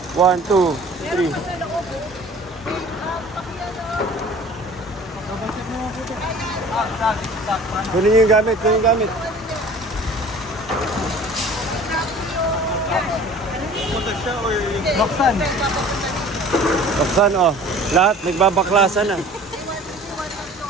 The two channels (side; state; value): both; normal; correlation 0.46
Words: 1, 2, 3. Kunin nyo yung gamit, Baksan, oh. Lahat, nagbabaklasan na.